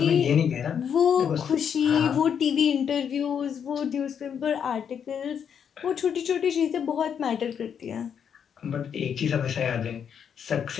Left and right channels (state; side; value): quieter; right; 7.8 dB